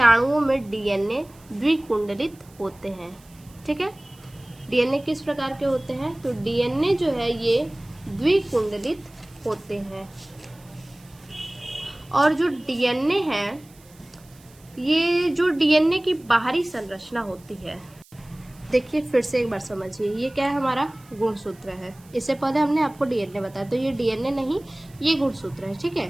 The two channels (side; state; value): right; noise; hiss, 27 dB below the sound